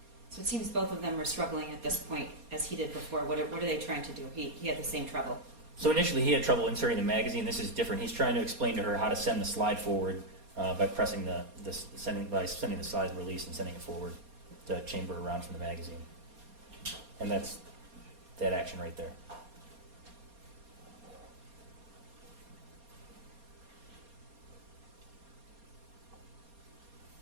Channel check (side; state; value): left; late; 4.2 ms